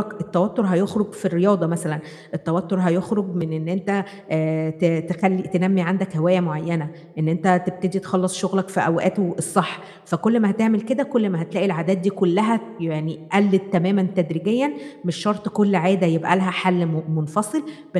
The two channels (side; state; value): both; identical; correlation 1.00